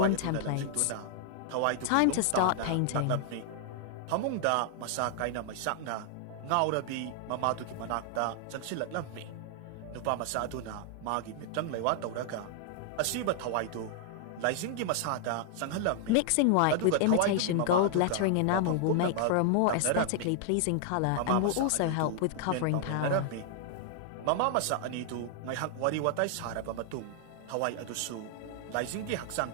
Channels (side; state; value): both; different; correlation 0.00